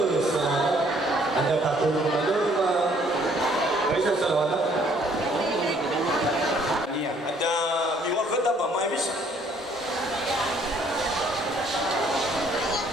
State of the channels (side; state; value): both; normal; correlation 0.62